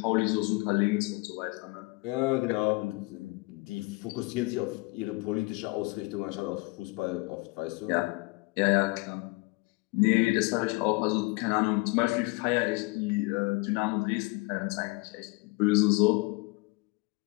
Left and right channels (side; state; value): right; quieter; 25.6 dB